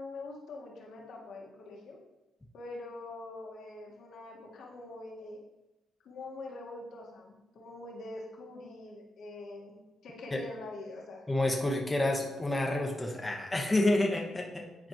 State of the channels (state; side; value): normal; both; correlation 0.90